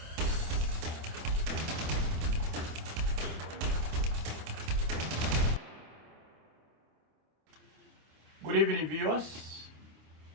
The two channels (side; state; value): left; late; 26 ms